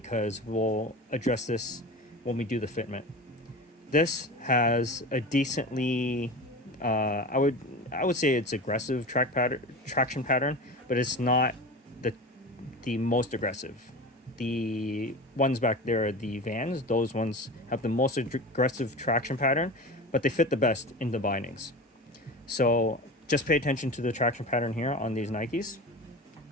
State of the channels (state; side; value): normal; both; correlation 0.31